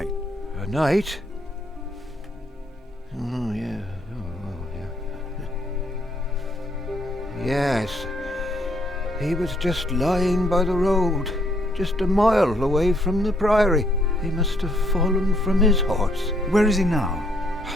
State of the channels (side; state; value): both; normal; correlation 0.70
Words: A knight? Oh, yeah. Oh, yeah. Yes. He was just lying by the road, just a mile away from the priory. He must have fallen from his horse. Where is he now?